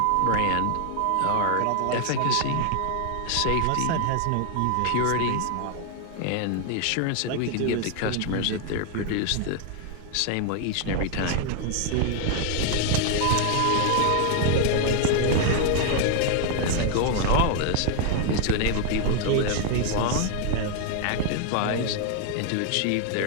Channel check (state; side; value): different; both; correlation 0.00